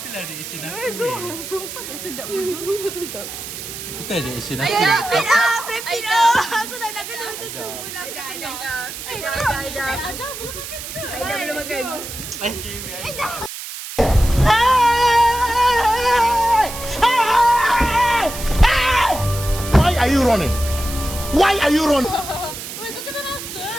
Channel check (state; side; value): noise; right; hiss, 9 dB below the sound